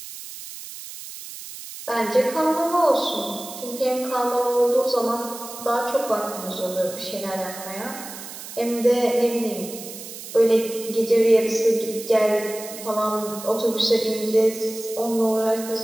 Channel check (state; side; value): noise; right; hiss, 12 dB below the sound